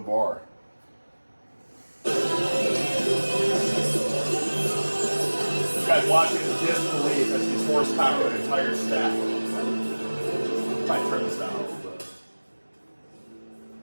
You guys watching in disbelief as these horsepower an entire stack. Might turn this down a little bit.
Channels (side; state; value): both; inverted; correlation -1.00